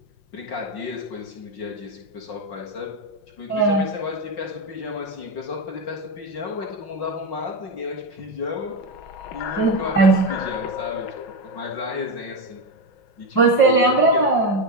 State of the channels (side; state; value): right; late; 5.6 ms